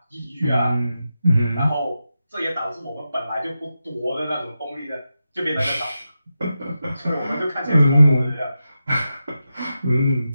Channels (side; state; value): both; inverted; correlation -0.90